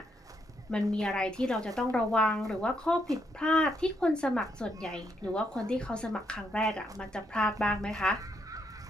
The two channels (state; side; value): normal; both; correlation 0.76